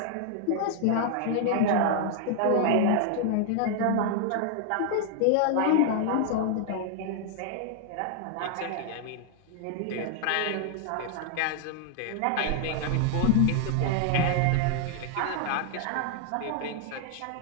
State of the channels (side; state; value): both; different; correlation 0.00